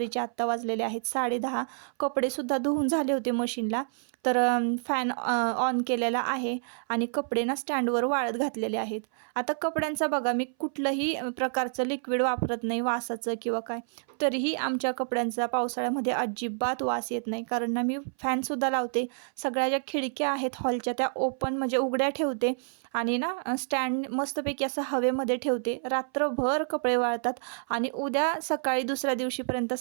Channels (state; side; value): silent; left; 59 dB below the other